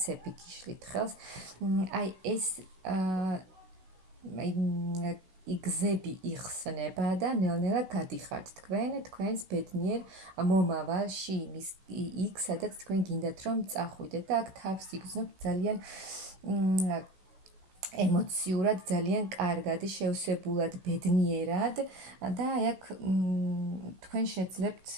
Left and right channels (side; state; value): left; late; 16 ms